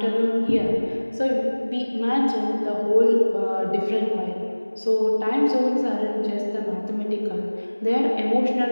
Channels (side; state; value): both; inverted; correlation -1.00